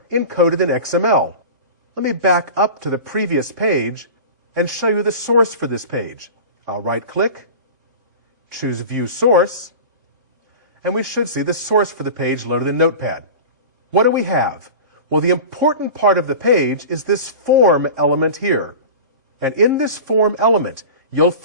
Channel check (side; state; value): left; late; 3.6 ms